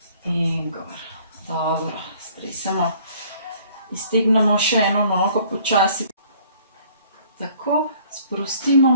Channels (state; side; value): inverted; both; correlation -0.57